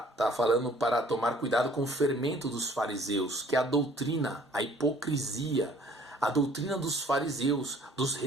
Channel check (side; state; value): both; normal; correlation 0.56